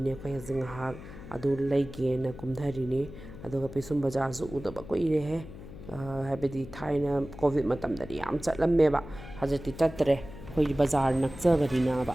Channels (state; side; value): noise; left; hum, 14 dB below the sound